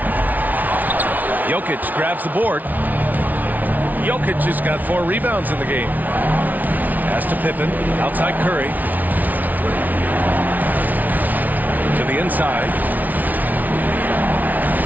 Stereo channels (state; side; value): late; left; 0.078 ms